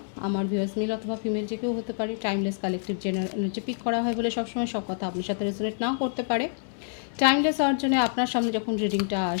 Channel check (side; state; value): right; silent; 60 dB below the other